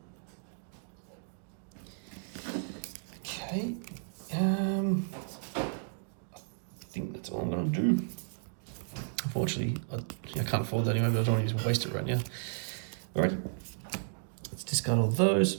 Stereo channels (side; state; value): left; silent; digital silence